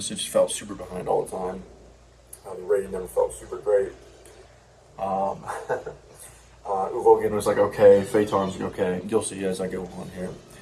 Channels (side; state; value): both; identical; correlation 1.00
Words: It just felt super behind all the time. The rating never felt super great. Uvogan was like okay, Phaeton's like okay. You'll see as I go on here.